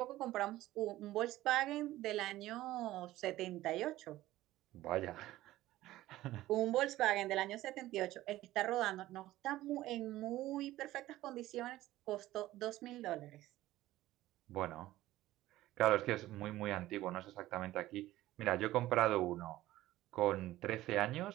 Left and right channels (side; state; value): left; quieter; 15.8 dB